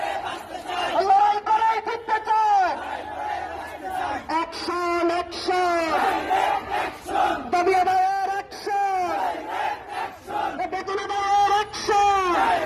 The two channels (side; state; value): both; identical; correlation 1.00